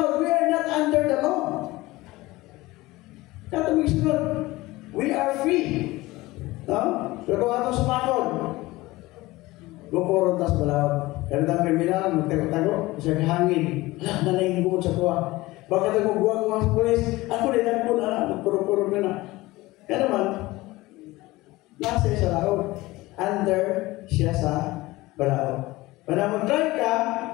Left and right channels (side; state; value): right; quieter; 19.6 dB